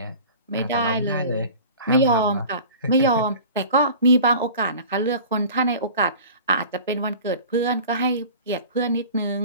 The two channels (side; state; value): both; inverted; correlation -0.40